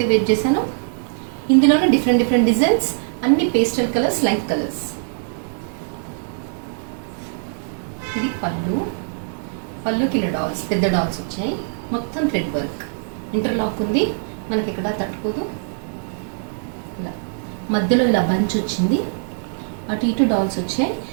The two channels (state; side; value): silent; left; digital silence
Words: వేర్ చేశానో ఇందులోనే డిఫరెంట్ డిజైన్స్, అన్ని పేస్టల్ కలర్స్, లైట్ కలర్స్. ఇది పళ్ళుకి ఇలా డాల్స్, పెద్ద డాల్స్ వచ్చాయి. మొత్తం థ్రెడ్ వర్క్, ఇంటర్లాక్ ఉంది, మనకి ఇక్కడ తట్టుకోదు. ఇలా మధ్యలో ఇలా బంచ్ వచ్చింది, అటు ఇటు డాల్స్ వచ్చాయి.